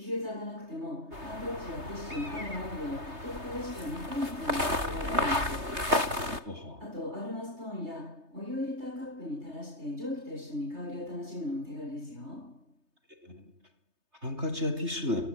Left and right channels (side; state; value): left; late; 3.3 ms